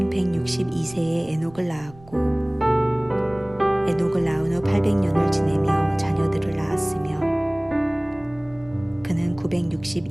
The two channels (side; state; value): right; noise; rumble, 23 dB below the sound